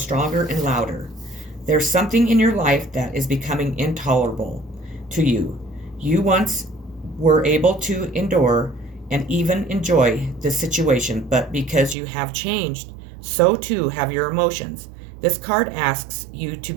and louder. There's something in your life that is becoming intolerable to you. You once were able to endure and even enjoy this situation, but because you have changed, so too have your emotions. This card asks you to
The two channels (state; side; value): drops out; left; at 12.0 s